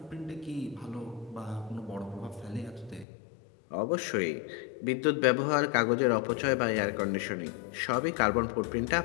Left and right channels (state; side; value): drops out; right; at 3.1 s